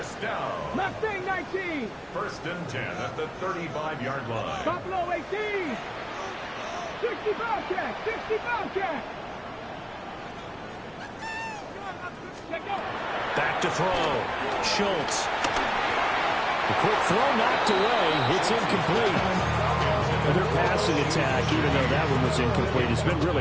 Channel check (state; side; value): identical; both; correlation 1.00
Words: down. Mustang 19. First and 10 at the 35-yard line. Buffalo 18. 60 Bobcat. 60 Bobcat. Back to throw. Schultz. The quick throw knocked away. It's incomplete. Their passing attack, even though that one was incomplete, has been